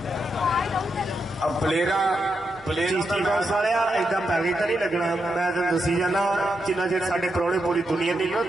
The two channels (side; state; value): both; normal; correlation 0.84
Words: अब प्लेयर ਚੀਸਤੀ ਬੌਸ ਵਾਲਿਆ ਏਦਾਂ ਪੈਕੇਜ ਤਾਂ ਨਹੀਂ ਲੱਗਣਾ। ਮੈਂ ਤਾਂ ਦੱਸੀ ਜਾਣਾ ਜਿੰਨਾ ਚਿਰ ਸਾਡੇ ਪ੍ਰਾਹੁਣੇ ਪੂਰੀ ਦੁਨੀਆ ਨਹੀਂ ਨਾ